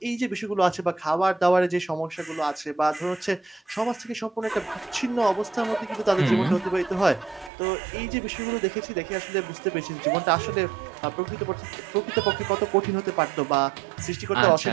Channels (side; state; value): left; drops out; at 7.5 s